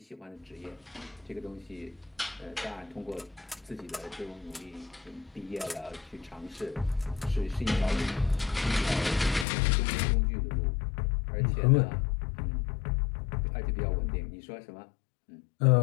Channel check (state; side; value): drops out; right; at 9.5 s